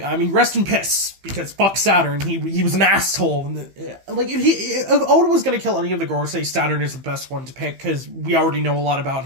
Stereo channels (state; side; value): late; left; 15 ms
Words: mean, rest in piss, because fuck Saturn, he was an asshole. And, like, if Oda was going to kill any of the Gorosei, Saturn is the best one to pick, because we already know a lot about